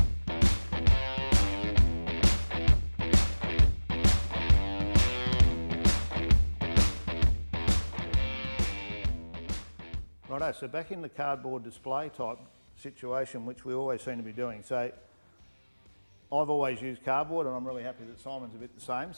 Righto, so back in the cardboard display type situation, which we always seem to be doing. So I've always used cardboard and I'm really happy that Simon's a bit the same.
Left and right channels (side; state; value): both; inverted; correlation -1.00